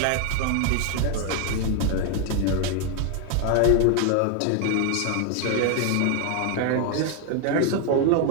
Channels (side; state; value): both; different; correlation 0.01